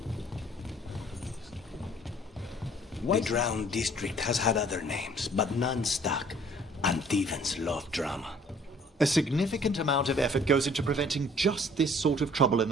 The Drowned District has had other names, but none stuck. Antevans love drama. A significant amount of effort goes into preventing just this sort of trouble in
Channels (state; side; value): normal; both; correlation 0.56